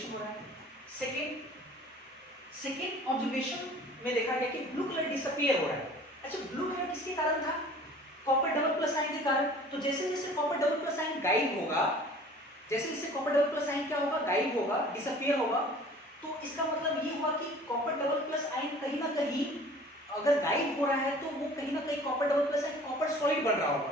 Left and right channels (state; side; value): normal; both; correlation 0.47